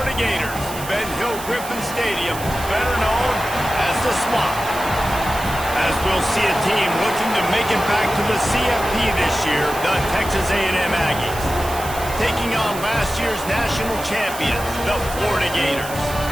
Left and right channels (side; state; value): right; noise; hiss, 12 dB below the sound